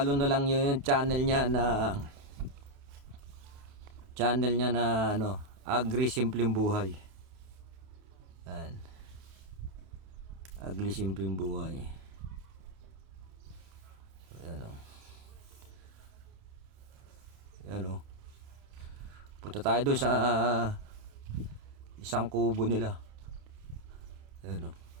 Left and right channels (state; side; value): late; left; 28 ms